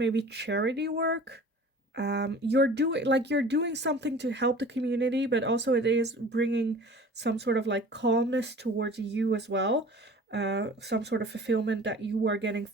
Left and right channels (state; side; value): normal; both; correlation 0.44